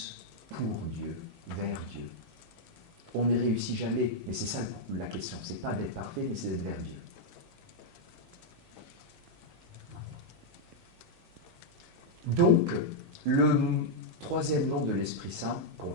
pour Dieu, vers Dieu. On ne réussit jamais, mais c'est ça la question. C'est pas d'être parfait, mais c'est d'être vers Dieu. Donc, le troisième nom de l'Esprit Saint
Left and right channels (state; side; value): normal; both; correlation -0.02